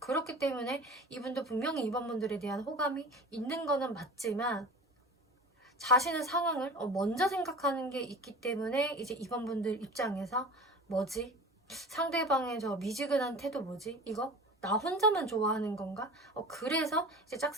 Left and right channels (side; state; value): both; normal; correlation 0.37